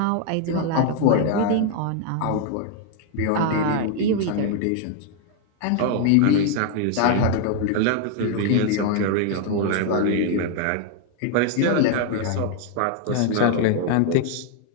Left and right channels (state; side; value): different; both; correlation 0.00